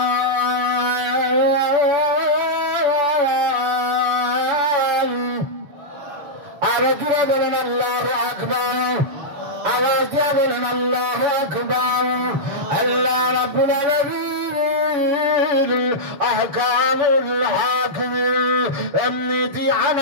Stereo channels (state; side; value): late; left; 6.9 ms